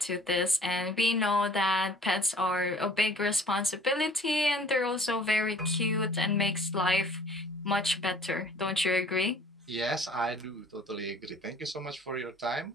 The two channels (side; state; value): both; normal; correlation 0.52